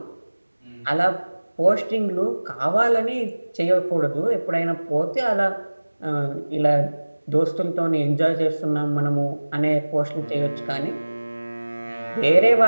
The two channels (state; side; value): inverted; both; correlation -1.00